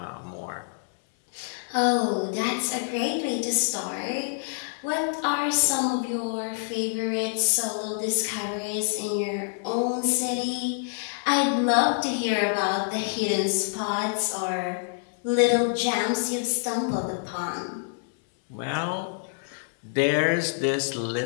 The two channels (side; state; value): right; silent; 61 dB below the other